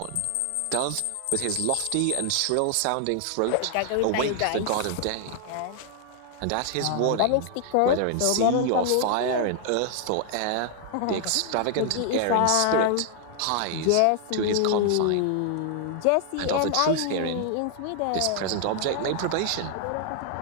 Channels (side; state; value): both; different; correlation 0.00